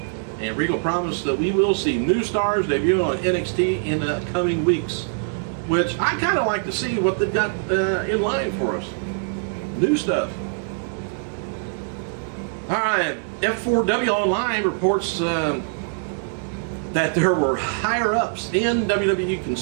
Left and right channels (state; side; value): silent; left; 63 dB below the other